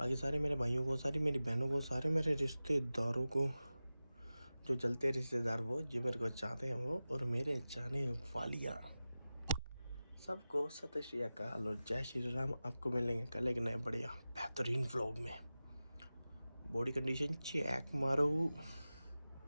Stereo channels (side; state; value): both; inverted; correlation -0.95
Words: सारे मेरे भाइयों को, सारी मेरी बहनों को, सारे मेरे रिश्तेदारों को, जो जलते रिश्तेदार वो, जो मेरे को चाहते हैं वो, और मेरे चाहने वालियाँ, सबको सत श्री अकाल और जय श्री राम। आपको मिलेंगे कल एक नए बढ़िया बेहतरीन व्लॉग में। बॉडी कंडीशन चेक मारो।